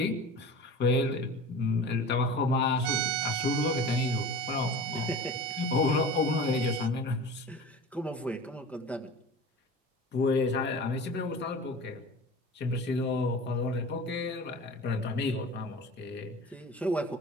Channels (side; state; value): both; normal; correlation 0.36